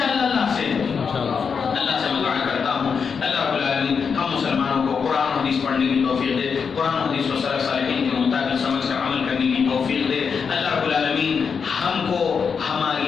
اللہ سے؟ اللہ سے میں دعا کرتا ہوں اللہ رب العالمین ہم مسلمانوں کو قرآن و حدیث پڑھنے کی توفیق دے، قرآن و حدیث کو سلف صالحین کے مطابق سمجھ کر عمل کرنے کی توفیق دے۔ اللہ رب العالمین ہم کو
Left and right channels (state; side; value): quieter; right; 6.1 dB